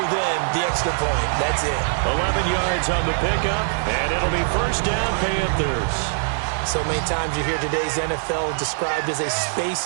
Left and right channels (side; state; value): left; silent; digital silence